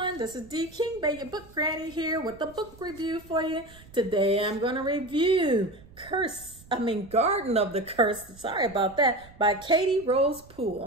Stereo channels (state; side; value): noise; right; rumble, 22 dB below the sound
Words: this is D King Bay, your book granny here with a book review for you. Today I'm going to review Garden of the Curse, sorry about that, by Katy Rose